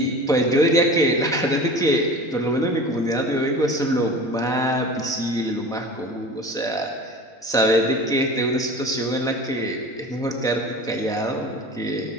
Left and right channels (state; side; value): normal; both; correlation 0.37